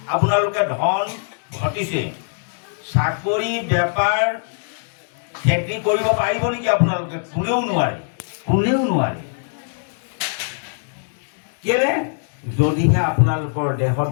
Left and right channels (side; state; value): right; silent; digital silence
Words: আপোনালোকে ধন ঘটিছে। চাকৰি বেপাৰ খেতি কৰিব পাৰিব নেকি আপোনালোকে? কোনেও নোৱাৰে, কোনেও নোৱাৰে। কেলে? যদিহে আপোনালোকৰ দেহত